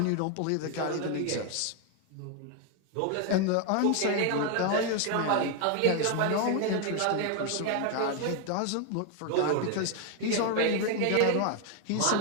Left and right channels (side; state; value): both; different; correlation 0.01